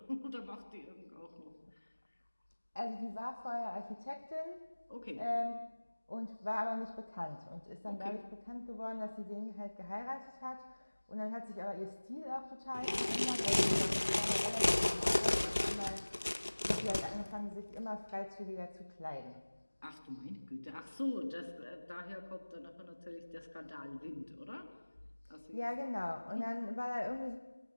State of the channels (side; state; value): both; inverted; correlation -1.00